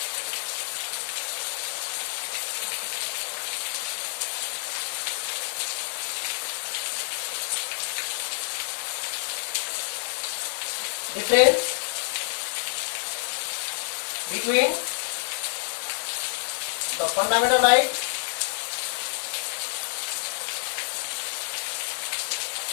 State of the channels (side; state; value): right; silent; digital silence